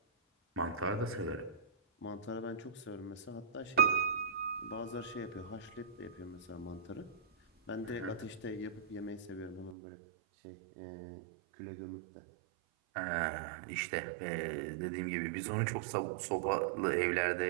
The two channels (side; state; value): left; drops out; at 9.8 s